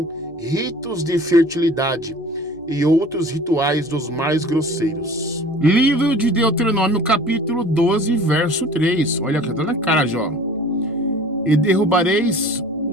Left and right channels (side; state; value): left; noise; hum, 29 dB below the sound